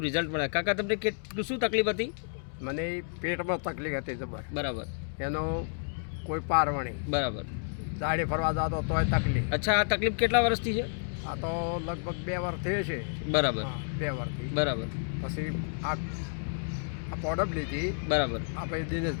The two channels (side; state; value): right; silent; digital silence